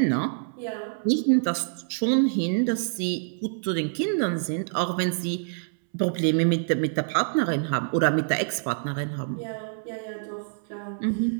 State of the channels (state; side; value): silent; left; 61 dB below the other